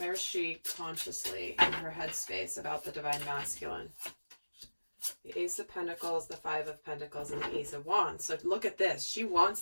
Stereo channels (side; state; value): both; inverted; correlation -1.00